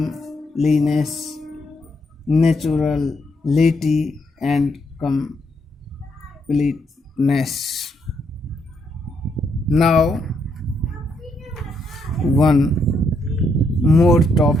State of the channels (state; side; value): normal; both; correlation 0.76